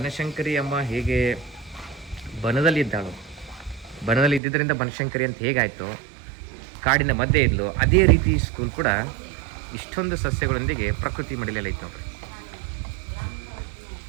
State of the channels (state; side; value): drops out; left; at 4.4 s